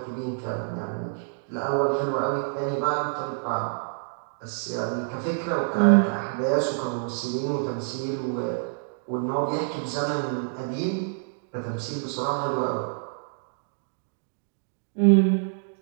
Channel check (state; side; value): silent; left; digital silence